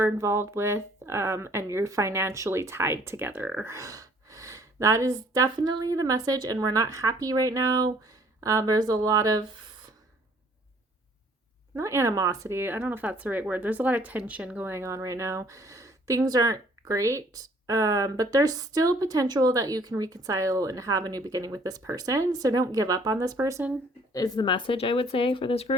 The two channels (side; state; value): both; normal; correlation 0.59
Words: involved with, and you're financially tied together. That is definitely the message, and we're not happy right now. There's a lot of, not animosity, I don't know if that's the right word. There's a lot of tension going on right now. Things aren't great, but there's still potential that you can reconcile and have a new beginning with this person. So don't give up on this person is the message I would say for this